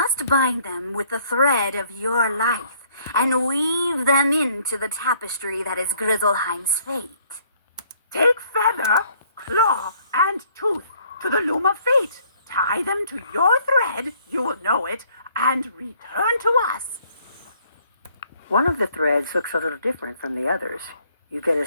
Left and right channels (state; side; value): inverted; both; correlation -0.63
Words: bind them with the thread of your life and weave them into the tapestry that is Grizzleheim's fate. Take feather, claw, and tooth to the loom of fate. Tie them to your thread, you will know it, and return to us. One of the threads looks a little different from the others. You get a